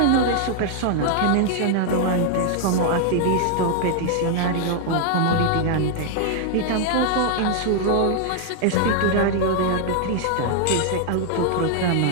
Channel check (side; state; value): both; different; correlation 0.00